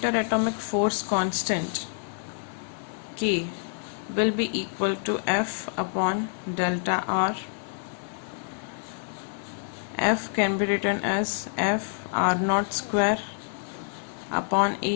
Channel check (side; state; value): right; silent; 60 dB below the other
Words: force constant K will be equal to F upon delta R. F can be written as F R naught square upon